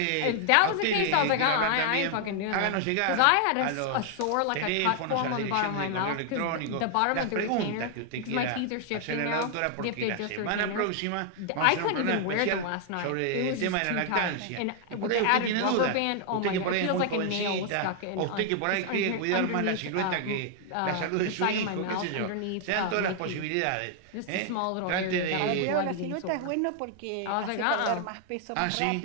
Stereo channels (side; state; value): both; different; correlation 0.00